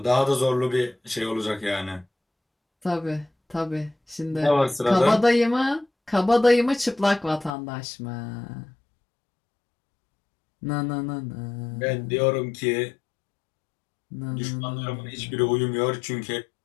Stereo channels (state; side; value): drops out; right; at 7.6 s